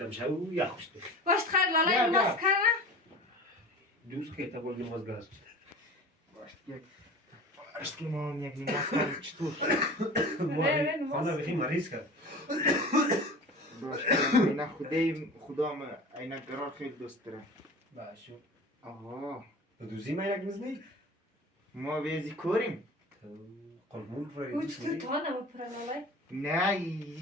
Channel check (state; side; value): normal; both; correlation 0.37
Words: شو یا خوشت. باش خیر لالا نماز کنه. دوست که تا بردی نماز گذاشت. باش یک. اشکی ما یک نماز کنم چطور؟ خانه بخی مریض کرد. باش اینا خدا ما اینا قرار خیلی دوست داره. باشو. آها. دوزی ما یک نزنی؟ ما ویزی کوریم. قربون روی. او چطور تو نمیپره لالا؟ نه